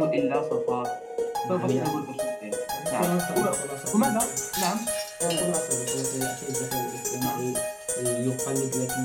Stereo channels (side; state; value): both; identical; correlation 1.00